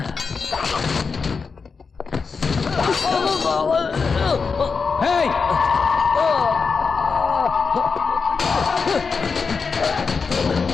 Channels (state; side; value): quieter; right; 5.1 dB